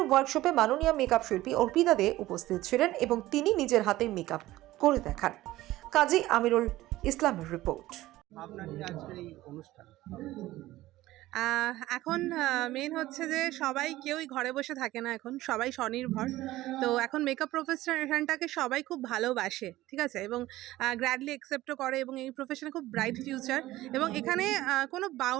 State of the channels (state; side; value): quieter; left; 16.5 dB